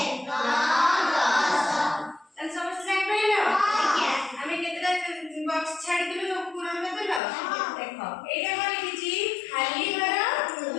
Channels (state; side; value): drops out; right; at 7.2 s